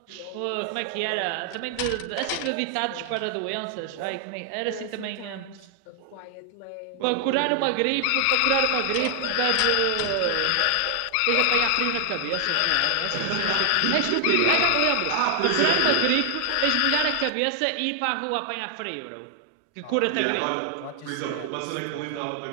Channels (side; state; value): both; different; correlation 0.00